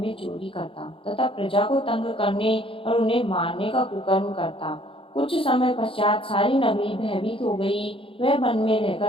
चोरी करता तथा प्रजा को तंग करने और उन्हें मारने का कुकर्म करता। कुछ समय पश्चात सारी नगरी भयभीत हो गई। वह वन में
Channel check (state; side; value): late; right; 0.26 ms